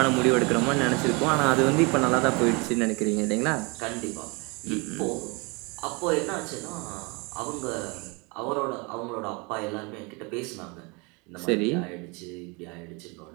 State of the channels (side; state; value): left; quieter; 29.4 dB